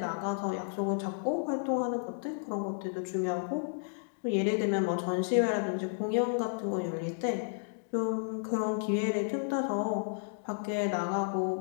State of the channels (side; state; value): right; silent; digital silence